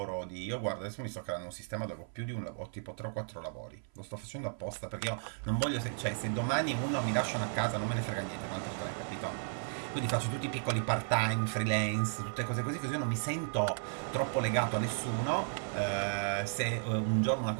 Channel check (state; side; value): silent; left; 55 dB below the other